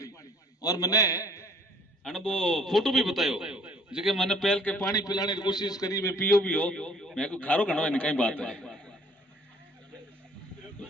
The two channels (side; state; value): both; normal; correlation 0.56